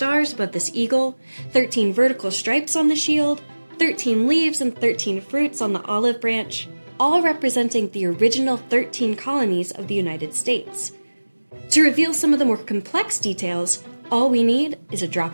above this eagle, 13 vertical stripes on the shield, 13 leaves and 13 fruits on the olive branch, all representing the original 13 colonies of the United States. To reveal some of the more complex details, all we need is a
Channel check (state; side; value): inverted; both; correlation -1.00